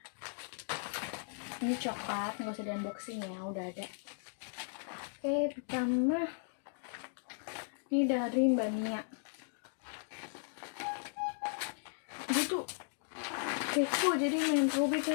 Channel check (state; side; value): silent; right; digital silence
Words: Ini coklat, nggak usah di unboxing ya, udah ada. Oke, pertama ini dari banyak. Dia tuh kepo, jadi main robek